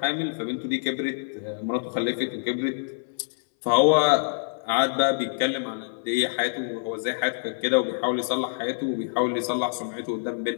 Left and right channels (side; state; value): right; silent; 61 dB below the other